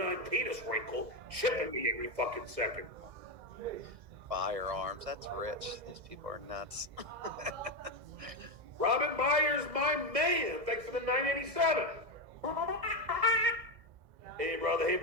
penis wrinkle chipping me every fucking second. Firearms. That's rich. These people are nuts. Robin Myers, my man. Thanks for the 987. Hey, brother.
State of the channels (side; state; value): left; late; 2.0 ms